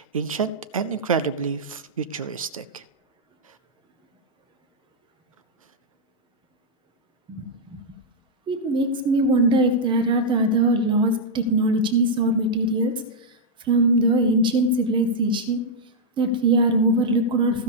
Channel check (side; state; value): both; normal; correlation -0.05